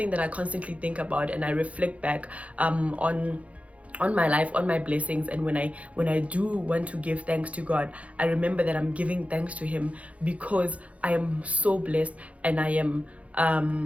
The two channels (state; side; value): late; left; 0.065 ms